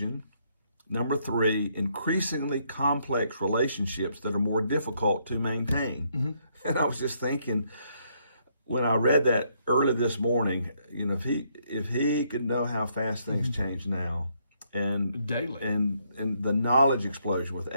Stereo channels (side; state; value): both; inverted; correlation -0.72